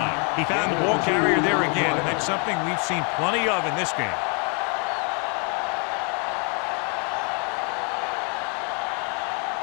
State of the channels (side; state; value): right; quieter; 36.9 dB